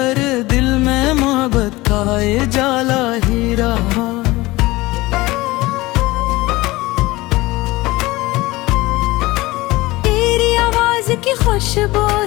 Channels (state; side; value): quieter; right; 20.3 dB